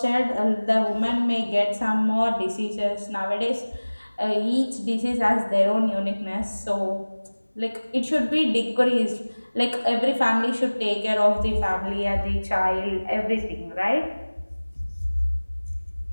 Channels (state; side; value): inverted; both; correlation -1.00